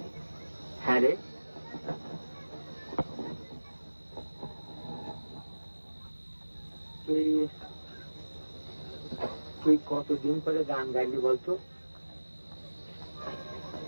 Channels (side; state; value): both; inverted; correlation -1.00